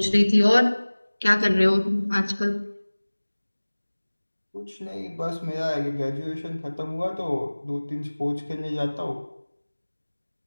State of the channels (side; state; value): both; inverted; correlation -1.00